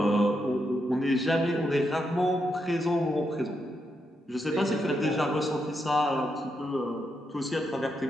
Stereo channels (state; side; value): normal; both; correlation 0.82